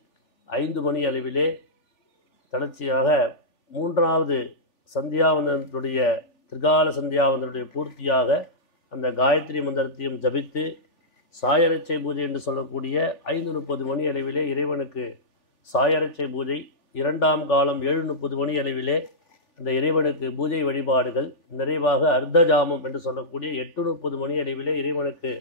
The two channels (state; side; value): late; right; 3.4 ms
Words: 5 மணி அளவிலே தொடர்ச்சியாக 3வது சந்தியாவந்தனத்துடைய திரிகால சந்தியாவந்தனுடைய பூர்த்தியாக அந்த காயத்ரி மந்திரத்தையும் ஜபித்து சாயரட்சை பூஜை என்று சொல்லக்கூடிய 5:30 மணி அளவிலே இறைவனுக்கு சாயரட்சை பூஜை, 2ஆம் காலம் 7:30 மணி அளவிலே அந்த இறைவனுக்கு பூஜை வழிபாடுகள் நிறைவாக அர்த்தஜாமம் என்று சொல்லக்கூடிய 8:30 மணி அளவிலே இறைவனுக்கு